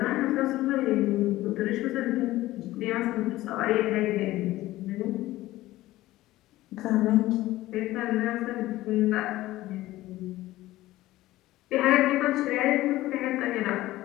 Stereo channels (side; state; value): right; quieter; 16.6 dB